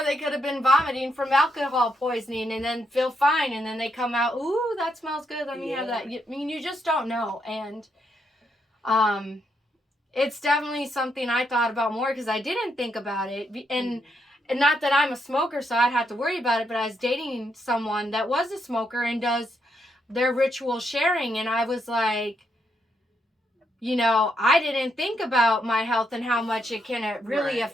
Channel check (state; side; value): normal; both; correlation 0.78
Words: they could have been vomiting from alcohol poisoning and then feel fine. And then they come out, ooh, that smells good. Let me have that. I mean, you just don't know. And it's definitely something I thought about more because I didn't think about it. And not that I'm a smoker, so I'd have to worry about it, but I was dating someone that was a smoker and does their ritual sharing, and I was like, I didn't think about my health and how much it can really